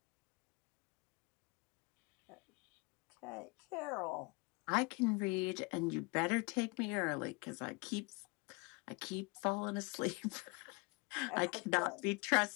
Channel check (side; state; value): right; quieter; 28.3 dB